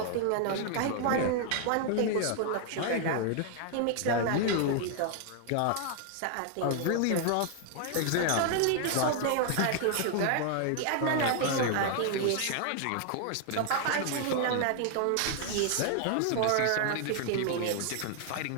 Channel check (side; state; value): both; different; correlation 0.00